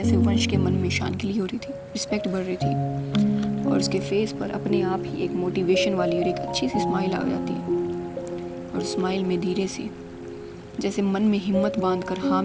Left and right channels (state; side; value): identical; both; correlation 1.00